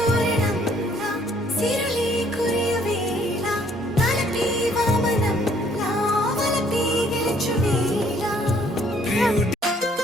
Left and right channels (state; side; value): normal; both; correlation 0.63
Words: సిరులే కురియవేళ తలపి వామనంలా వలపి గెలుచువేళ